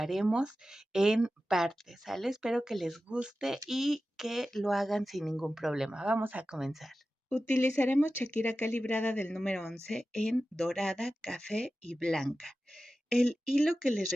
en partes, ¿sale? Espero que les guste y que lo hagan sin ningún problema. Vamos a comenzar. Utilizaremos Shakira calibrada del número 11 en dorada, café y blanca. El hilo que les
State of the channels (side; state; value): both; normal; correlation 0.94